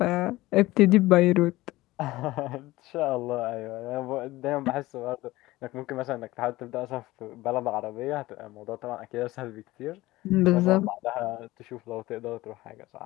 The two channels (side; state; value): right; quieter; 18.4 dB